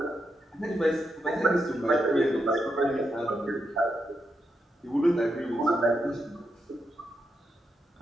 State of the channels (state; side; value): normal; both; correlation 0.84